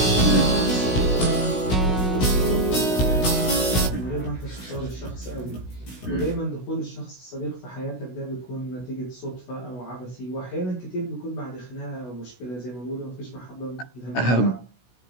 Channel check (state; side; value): late; right; 16 ms